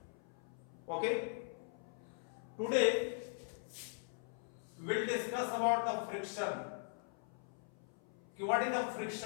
Okay, today we will discuss about the friction. What is the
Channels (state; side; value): silent; right; 51 dB below the other